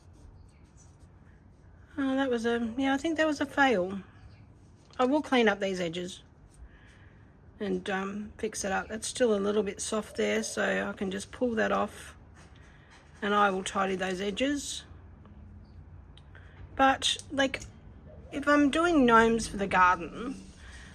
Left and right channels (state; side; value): identical; both; correlation 1.00